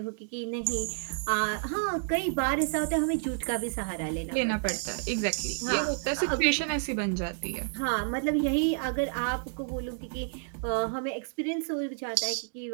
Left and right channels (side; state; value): left; silent; digital silence